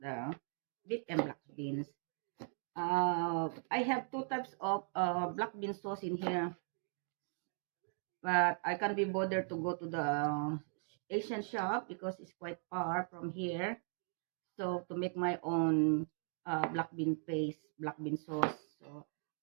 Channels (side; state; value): left; silent; 52 dB below the other